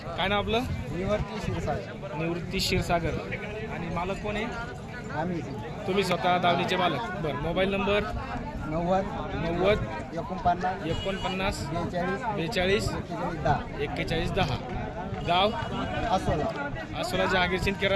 काय नाव आपलं? निवृत्ती क्षीरसागर. निवृत्ती क्षीरसागर. आणि मालक कोण आहे? आम्ही. तुम्ही स्वतः दावणीचे मालक. बरं, मोबाईल नंबर 90 49 49 42 41 10. गाव आसोला जहागीर सिंदखेड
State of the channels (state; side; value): identical; both; correlation 1.00